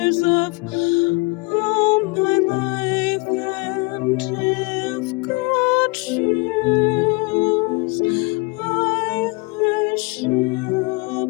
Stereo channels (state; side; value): quieter; right; 28.2 dB